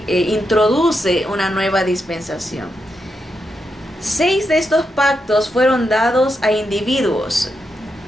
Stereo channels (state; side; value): normal; both; correlation 0.84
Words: introduce una nueva dispensación. 6 de estos pactos fueron dados a individuos